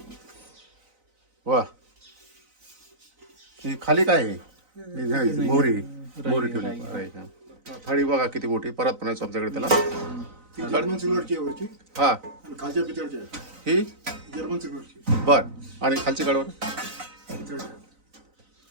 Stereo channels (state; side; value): late; left; 3.9 ms